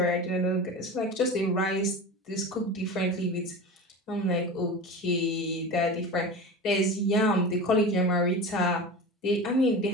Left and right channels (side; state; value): both; normal; correlation 0.30